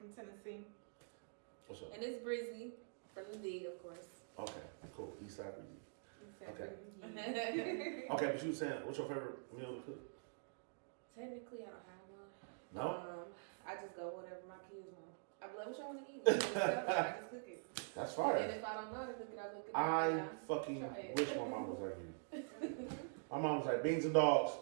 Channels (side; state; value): left; silent; digital silence